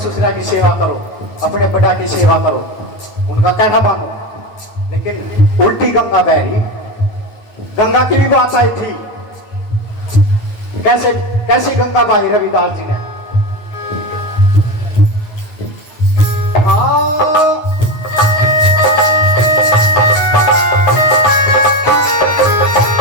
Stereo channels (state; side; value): late; right; 9.0 ms